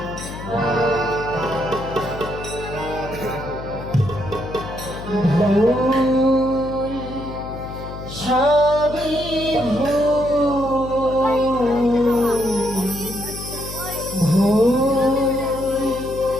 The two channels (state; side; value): noise; left; hum, 10 dB below the sound